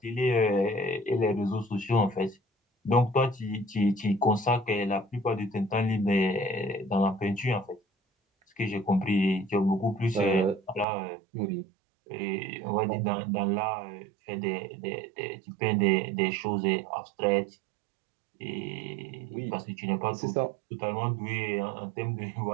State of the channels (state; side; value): drops out; left; at 10.9 s